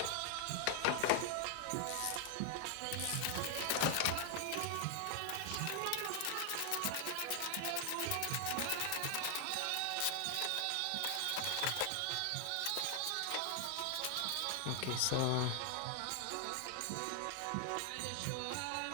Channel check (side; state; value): both; different; correlation 0.00